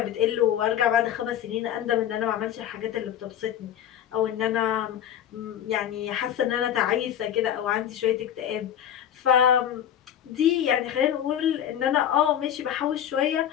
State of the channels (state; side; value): quieter; right; 10.1 dB